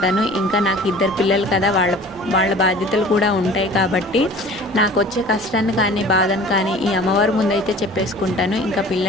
ఇంకా నాకు 2 పిల్లలు కదా, వాళ్ళ బాధ్యతలు కూడా ఉంటాయి కాబట్టి నాకు వచ్చే కష్టాన్ని కానీ బాధను కానీ ఈ అమ్మవారి ముందైతే చెప్పేసుకుంటాను. ఇంకా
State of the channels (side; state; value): both; normal; correlation 0.44